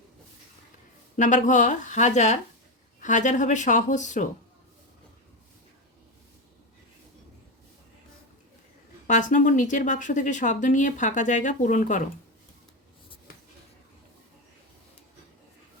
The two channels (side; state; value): both; normal; correlation 0.14